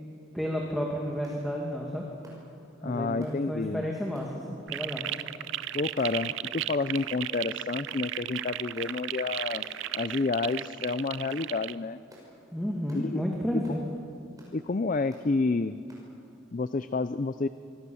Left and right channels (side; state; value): both; normal; correlation 0.45